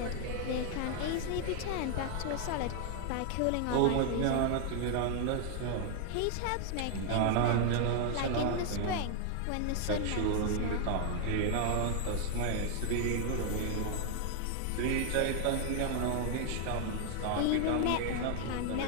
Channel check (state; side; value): different; both; correlation 0.00